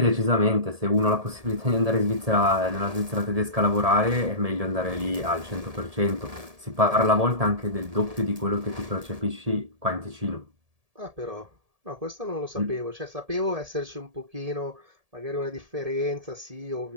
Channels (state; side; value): late; left; 1.7 ms